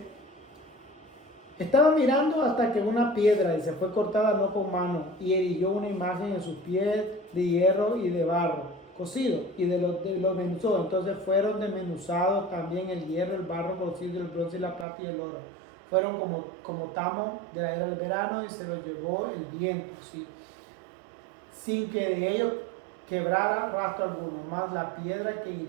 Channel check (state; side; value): drops out; left; at 14.9 s